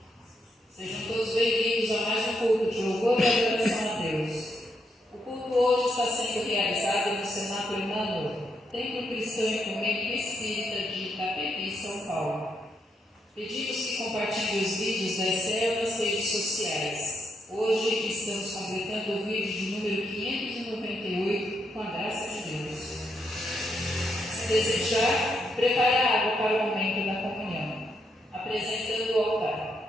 Sejam todos bem-vindos a mais um culto de louvor e adoração a Deus. O culto hoje está sendo realizado no Cenáculo Emmanuel, Templo Cristão Ecumênico Espírita de Itapevi, São Paulo. Pedimos que compartilhem os vídeos da ECEL nas redes sociais. Hoje estamos completando o vídeo de número 598, com a graça de Deus. Se desejar, prepare a água para o momento da comunhão, apresentando o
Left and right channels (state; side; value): normal; both; correlation 0.79